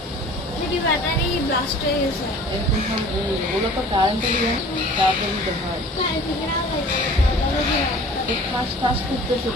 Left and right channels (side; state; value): both; normal; correlation 0.46